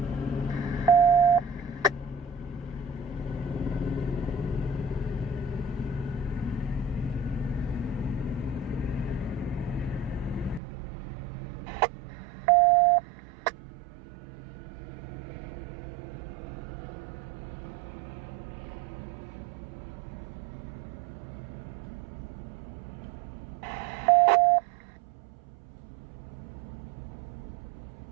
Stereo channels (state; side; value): drops out; left; at 10.6 s